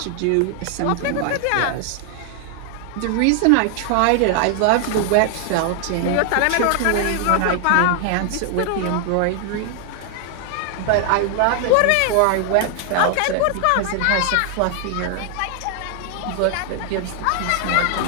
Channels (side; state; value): both; different; correlation 0.00